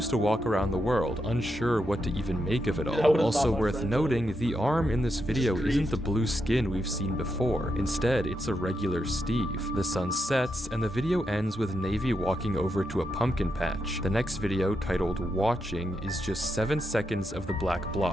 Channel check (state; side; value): normal; both; correlation 0.83